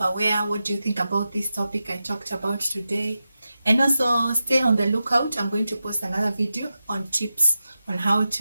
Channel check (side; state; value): both; inverted; correlation -0.91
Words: What do you think about this topic I talked about today? And also stay on the lookout. I'm going to post another video on tips on how